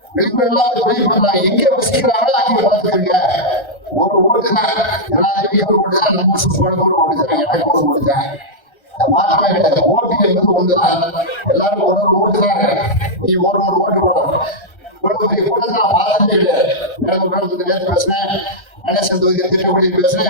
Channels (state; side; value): late; right; 1.3 ms